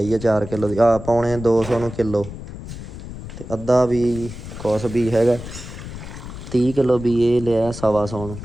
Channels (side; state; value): left; noise; rumble, 11 dB below the sound